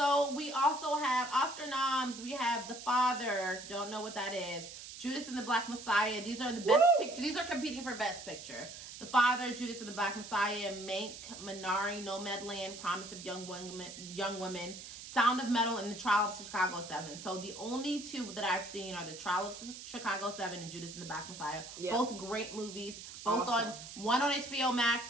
we also have Oscar noms. We have The Father. Don't know what that is. Judas and the Black Messiah. These are the best picture. These are competing for best picture. The Father, Judas and the Black Messiah, Mank, Minari, Nomadland, Promise of Young Women, Sound of Metal, and The Trial of Chicago 7. So the only 2 that I've seen are The Trial of Chicago 7 and Judas and the Black Messiah. Yeah. Both great movies. Both one on HBO Max,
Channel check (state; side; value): noise; right; hiss, 12 dB below the sound